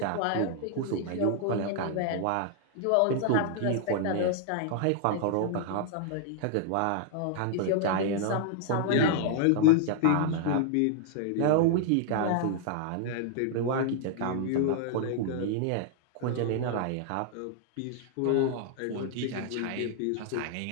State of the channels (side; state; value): both; different; correlation 0.00